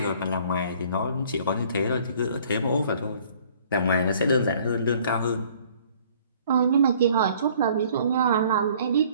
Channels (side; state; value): both; inverted; correlation -0.57